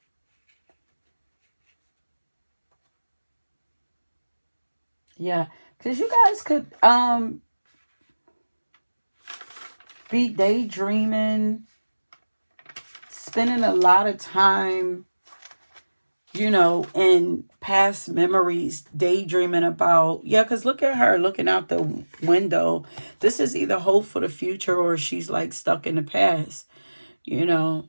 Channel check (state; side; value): inverted; both; correlation -1.00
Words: Yeah, because you guys could be daydreaming, spending a lot of time, in past memories, daydreaming about, yeah, because look at her looking out the window. This is either hope for the future or she's like stuck in the past,